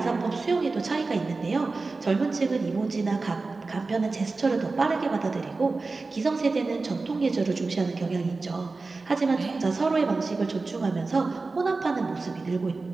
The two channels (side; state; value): left; quieter; 3.8 dB